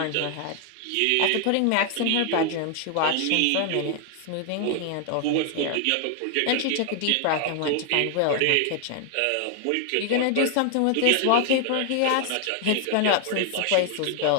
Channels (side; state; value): both; different; correlation 0.00